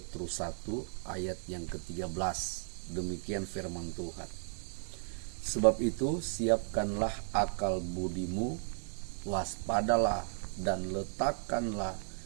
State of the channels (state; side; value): silent; left; digital silence